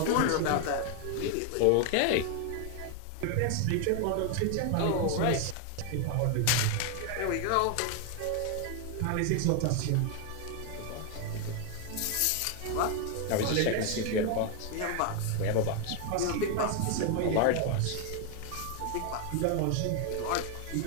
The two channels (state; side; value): different; both; correlation 0.00